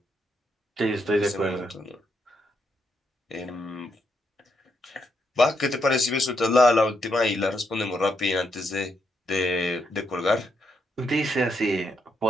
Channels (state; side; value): normal; both; correlation 0.79